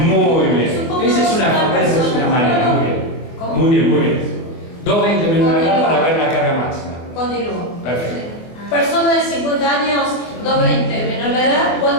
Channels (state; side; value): late; right; 24 ms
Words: Muy bien. Supongamos Esa es una manera, muy bien. ¿Cómo? Muy bien, muy bien. 220 menos de edad para ver la carga máxima. Continúo. Perfecto. Persona de 50 años, 220 menos la edad,